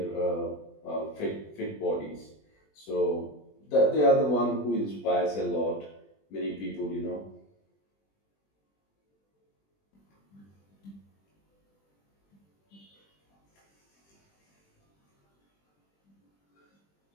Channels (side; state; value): right; late; 20 ms